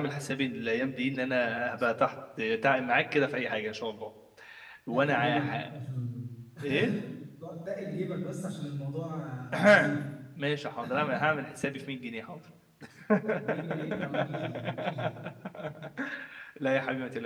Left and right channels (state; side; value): identical; both; correlation 1.00